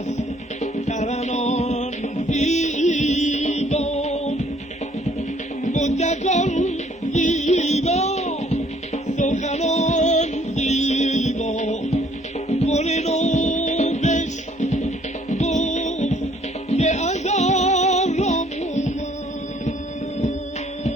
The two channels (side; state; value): both; normal; correlation 0.62